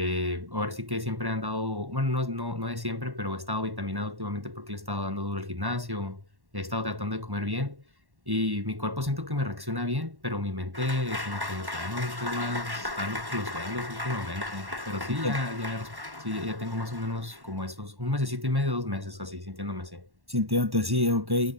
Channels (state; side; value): late; left; 1.1 ms